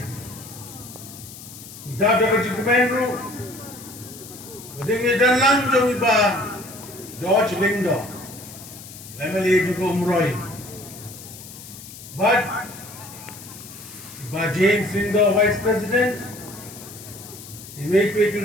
Ni Dr. Kajikumenru, Madingi dan langjong iba George Lindo, MLA juga umroy. But iba James Lindo, Vice President, iwek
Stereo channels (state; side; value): noise; left; hiss, 15 dB below the sound